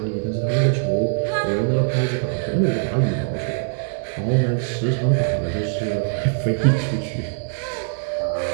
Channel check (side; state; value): left; silent; digital silence